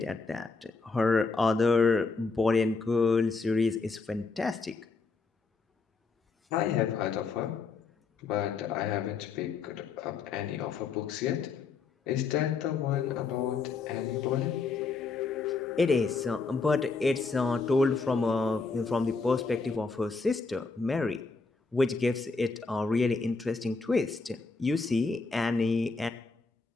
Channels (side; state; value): right; quieter; 4.3 dB